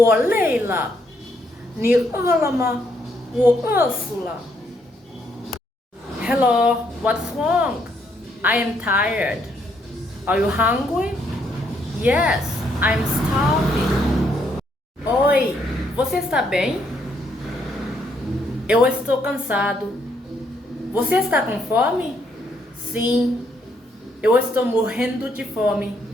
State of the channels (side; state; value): both; normal; correlation 0.73